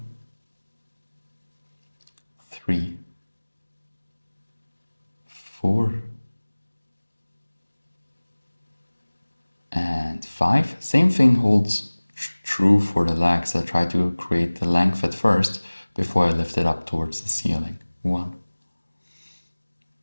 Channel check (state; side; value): inverted; both; correlation -1.00